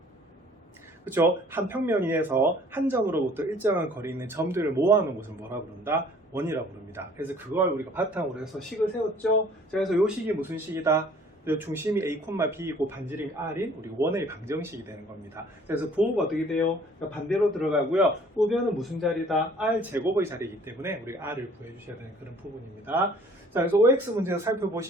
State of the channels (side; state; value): both; normal; correlation 0.54